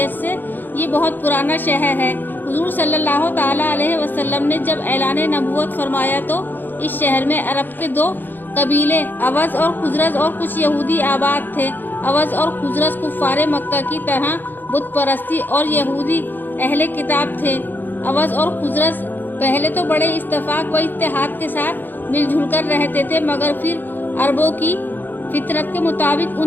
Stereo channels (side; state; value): right; late; 0.090 ms